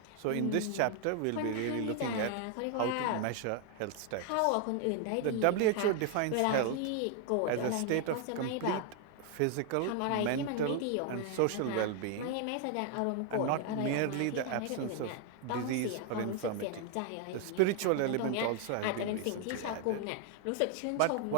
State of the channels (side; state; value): both; different; correlation 0.00